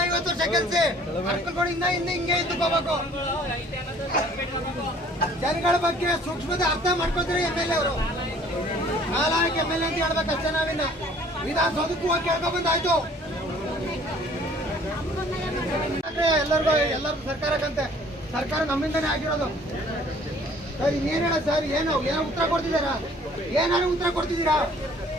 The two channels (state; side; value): normal; both; correlation 0.55